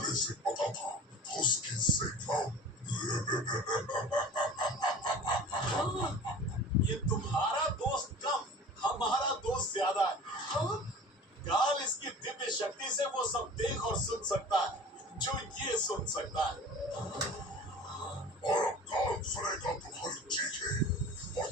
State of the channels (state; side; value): normal; both; correlation 0.40